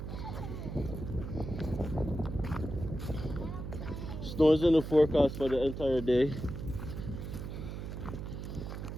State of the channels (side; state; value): right; noise; hum, 7 dB below the sound